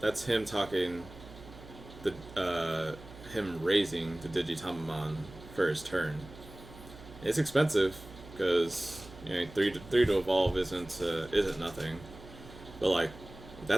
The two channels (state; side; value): noise; right; hum, 18 dB below the sound